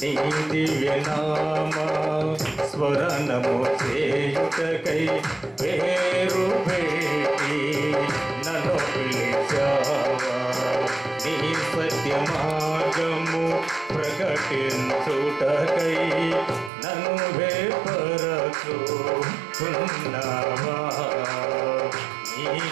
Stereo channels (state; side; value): drops out; left; at 16.7 s